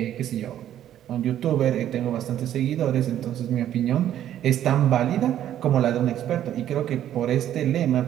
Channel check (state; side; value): quieter; left; 11.3 dB